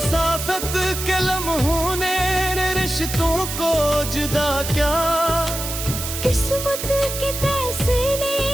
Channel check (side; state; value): right; noise; hiss, 6 dB below the sound